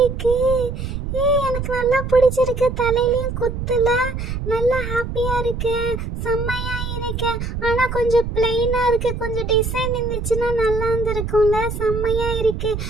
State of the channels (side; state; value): right; noise; rumble, 5 dB below the sound